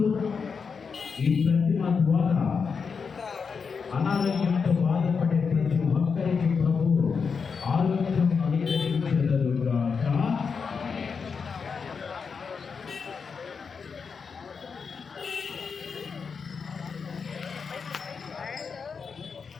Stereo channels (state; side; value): quieter; right; 5.6 dB